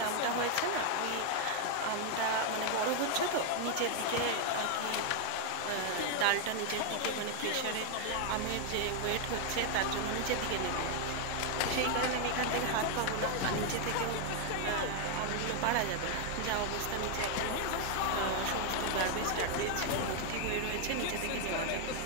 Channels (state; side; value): different; both; correlation 0.00